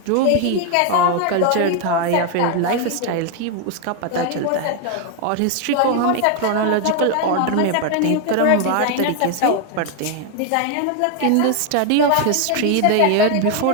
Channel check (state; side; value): different; both; correlation 0.00